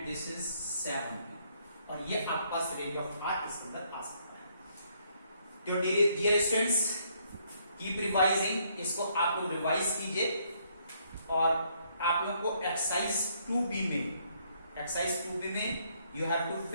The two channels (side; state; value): both; inverted; correlation -0.70